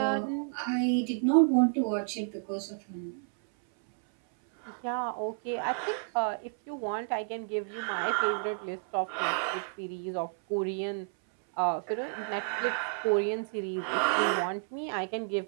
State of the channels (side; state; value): left; silent; 57 dB below the other